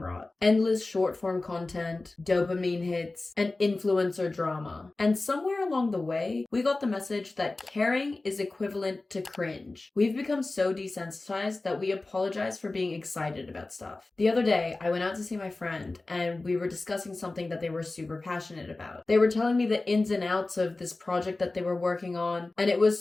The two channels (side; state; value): right; quieter; 3.2 dB